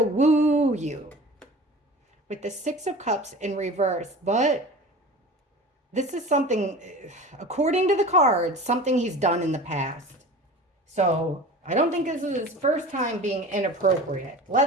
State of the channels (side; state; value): both; normal; correlation 0.37